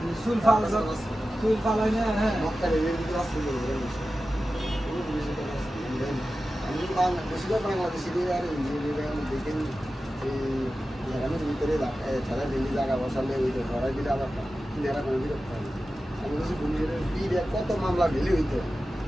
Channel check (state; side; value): normal; both; correlation 0.94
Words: সুল ফালানো হ্যাঁ গ্রামের ভিতরে ছাড়া ডেলি জায়গা বসালে ওই তো ধরাই দিলে আবার নেরা করে বিরক্ত হয় আমি বলছি কত মামলা ডেলি হইতো